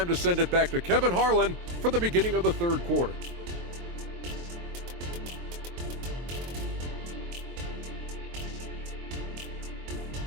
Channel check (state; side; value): late; left; 23 ms